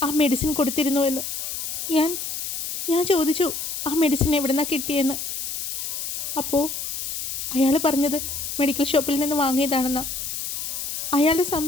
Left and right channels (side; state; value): left; noise; hiss, 4 dB below the sound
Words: ആ മെഡിസിൻ കൊടുത്തിരുന്നു എന്ന്. ഞാൻ ചോദിച്ചു ആ മെഡിസിൻ എവിടെ നിന്നാണ് കിട്ടിയെന്ന്. അപ്പോൾ അയാൾ പറഞ്ഞത് മെഡിക്കൽ ഷോപ്പിൽ നിന്ന് വാങ്ങിയതാണെന്നാണ്. അയാളുടെ